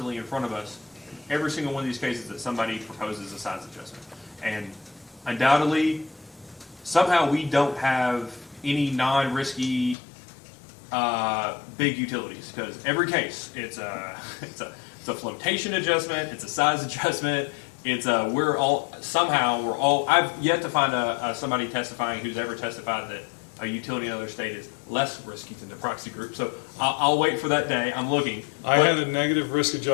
in front of us. Every single one of these cases that somebody proposes a size adjustment. And undoubtedly, somehow we don't have any non-risky big utilities, because every case, it's a flotation adjustment, it's a size adjustment, it's I've yet to find somebody testifying who's ever testified that a utility in another state is less risky than the proxy group. So I'll wait for that day. I'm looking. I had a negative risk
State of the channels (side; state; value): right; drops out; at 10.0 s